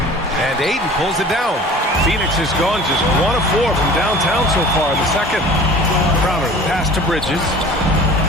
Ayton pulls it down. Phoenix has gone just 1 of 4 from downtown so far in the second. Crowder pass to Bridges.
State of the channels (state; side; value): normal; both; correlation 0.44